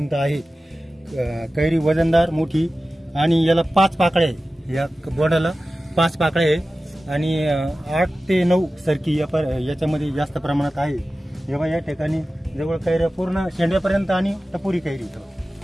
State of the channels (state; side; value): normal; both; correlation 0.95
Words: आहे। कैरी वजनदार मोठी आणि याला 5 पाकळ्या आहे, या बोंडाला 5 पाकळ्या आहे आणि 8 ते 9 सरकी याच्यामध्ये जास्त प्रमाणात आहे। जेव्हा या ठिकाणी जवळ कैऱ्या पूर्ण शेंड्यापर्यंत आणि टपोरी